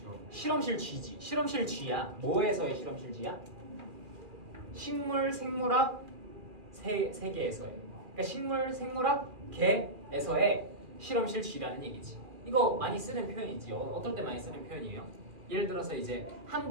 실험실 쥐지. 실험실 쥐야. 뭐에서의 실험실 쥐야? 식물 생물학 세계에서의. 그러니까 식물 생물학 계에서의 실험실 쥐라는 얘기지. 이거 많이 쓰는 표현이지. 어떨 때 많이 쓰는 표현이에요? 예를 들어서 이제 한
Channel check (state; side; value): late; left; 2.4 ms